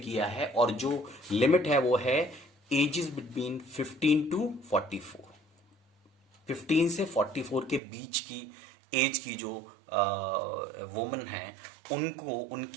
है। और जो लिमिट है वो है एजेस बिटवीन 15 टू 44। 15 से 44 के बीच की एज की जो वुमेन है, उनको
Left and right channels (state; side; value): drops out; left; at 7.8 s